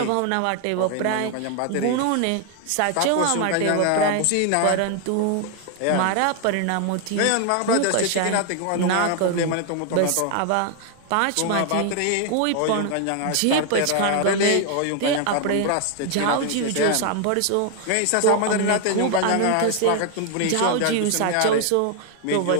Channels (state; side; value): different; both; correlation 0.00